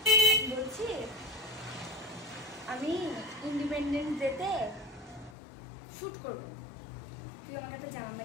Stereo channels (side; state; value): right; drops out; at 5.4 s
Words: বলছি আমি ইন্ডিপেন্ডেন্স ডেতে শুট করব, তুই আমাকে একটা জামা